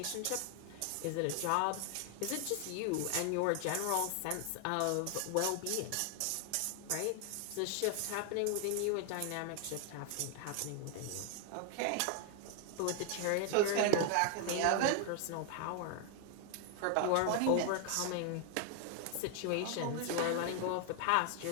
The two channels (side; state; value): both; different; correlation 0.00